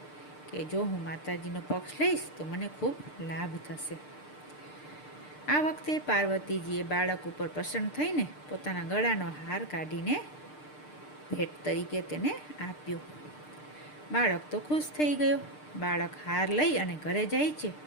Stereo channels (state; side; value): late; right; 6.6 ms